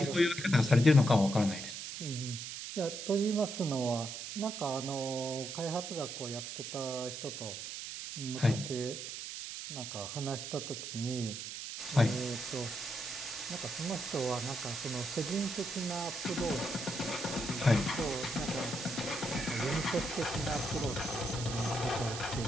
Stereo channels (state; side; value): noise; right; hiss, 7 dB below the sound